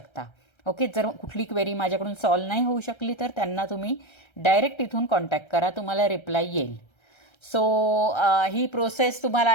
ओके, जर कुठली क्वेरी माझ्याकडून सॉल्व्ह नाही होऊ शकली तर त्यांना तुम्ही डायरेक्ट इथून कॉन्टॅक्ट करा, तुम्हाला रिप्लाय येईल. सो ही प्रोसेस तुम्हाला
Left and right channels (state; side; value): late; right; 1.3 ms